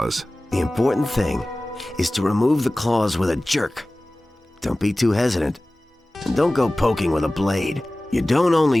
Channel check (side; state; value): both; normal; correlation 0.98